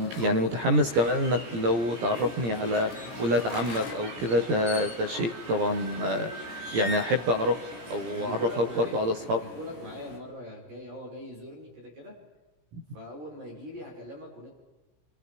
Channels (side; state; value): left; late; 17 ms